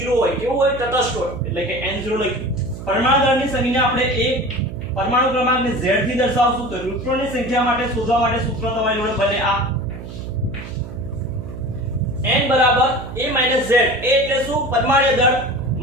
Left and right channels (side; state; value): right; noise; hum, 11 dB below the sound